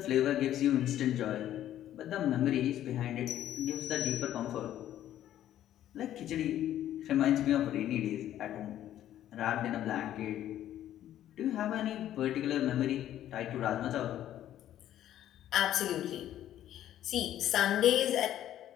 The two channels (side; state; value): right; quieter; 12.0 dB